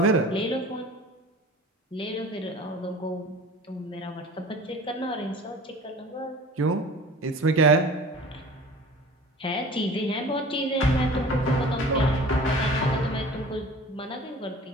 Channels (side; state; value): both; normal; correlation 0.42